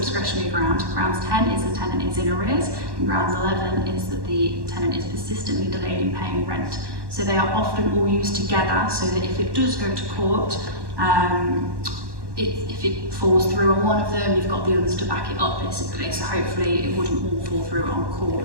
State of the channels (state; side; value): late; left; 1.1 ms